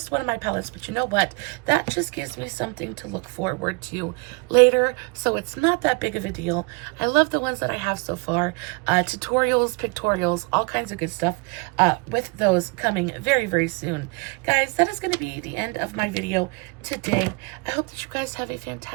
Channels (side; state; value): left; quieter; 30.4 dB